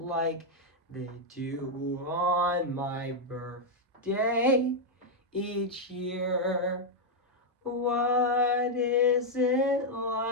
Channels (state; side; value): normal; both; correlation -0.01